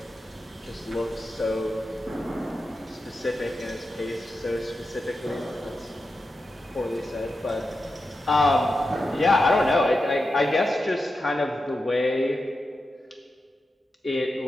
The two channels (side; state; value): both; normal; correlation 0.90